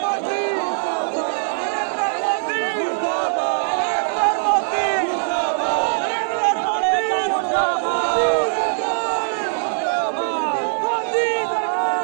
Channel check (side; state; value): left; silent; digital silence